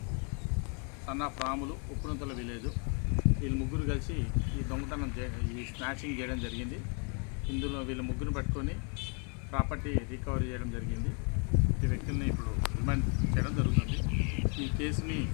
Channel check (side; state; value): right; quieter; 38.5 dB